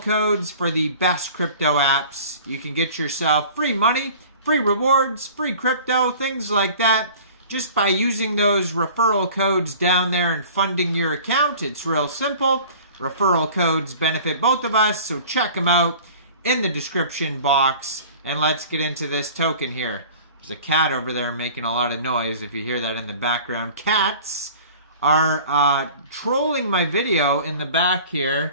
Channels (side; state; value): both; inverted; correlation -0.44